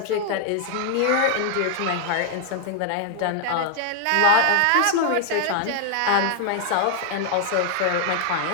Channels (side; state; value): both; different; correlation 0.00